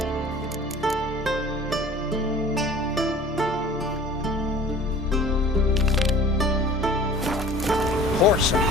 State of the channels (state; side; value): normal; both; correlation 0.45